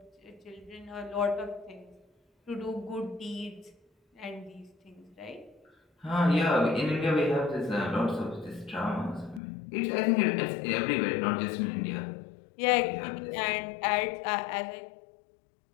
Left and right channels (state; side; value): drops out; right; at 9.4 s